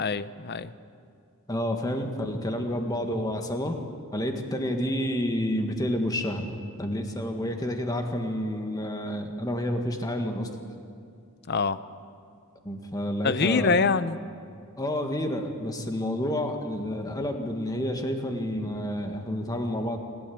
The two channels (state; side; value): normal; both; correlation 0.47